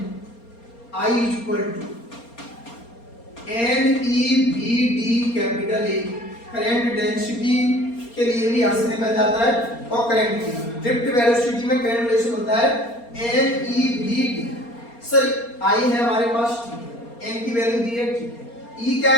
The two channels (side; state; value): right; late; 4.3 ms